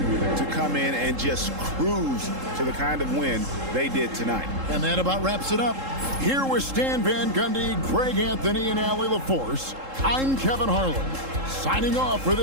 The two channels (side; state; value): left; late; 3.7 ms